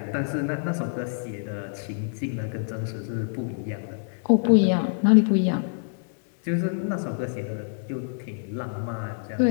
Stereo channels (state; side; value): silent; right; 61 dB below the other